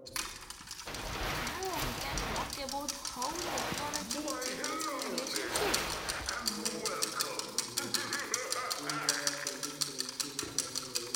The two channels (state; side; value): identical; both; correlation 1.00